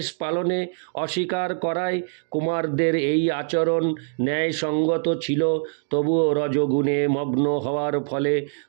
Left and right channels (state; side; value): silent; left; digital silence